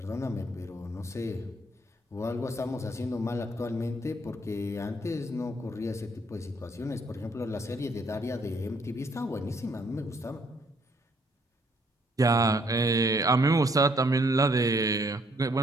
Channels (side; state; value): both; normal; correlation 0.67